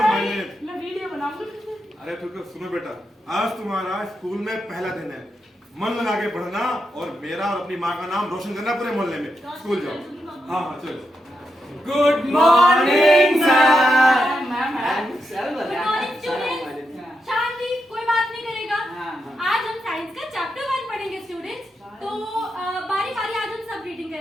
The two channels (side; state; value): both; normal; correlation 0.85